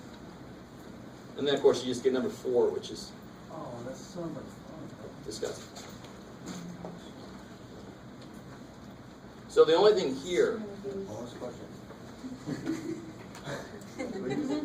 And then, of course, you just get number 4, which is Oh, that's so much fun. disgusting. So the only thing here, Bonus question.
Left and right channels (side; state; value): both; identical; correlation 1.00